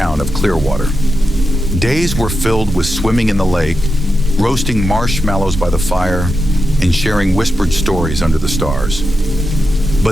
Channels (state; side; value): normal; both; correlation 0.88